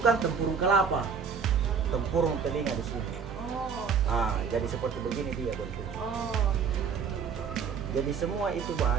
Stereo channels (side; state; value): left; quieter; 6.3 dB